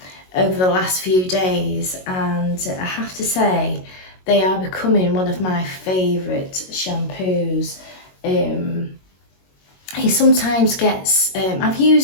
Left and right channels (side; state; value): right; late; 22 ms